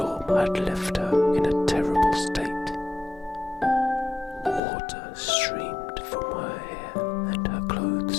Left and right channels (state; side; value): drops out; right; at 4.6 s